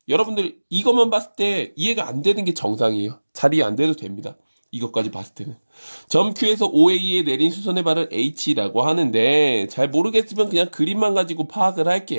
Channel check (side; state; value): both; inverted; correlation -1.00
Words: 여러분들 이것만 봤을 때 이해가 안 되는 게 정상이에요. 잘 이해 안 돼도 됩니다. 이것까지 봤을 때는. 점 Q에서 OA에 내린 수선의 발을 H라고 하는데 잘 모르겠으면 그냥 그림만 가지고 파악을